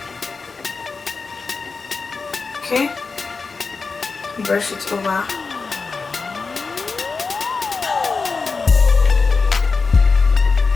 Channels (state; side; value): quieter; right; 4.5 dB